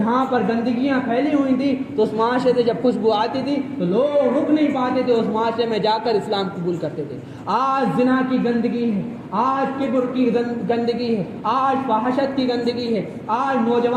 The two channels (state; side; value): identical; both; correlation 1.00